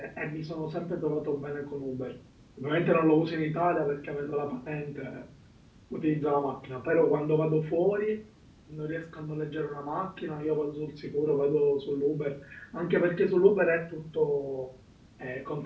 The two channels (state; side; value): identical; both; correlation 1.00